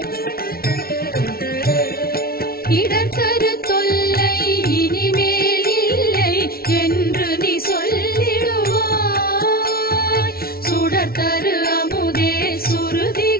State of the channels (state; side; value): late; right; 0.44 ms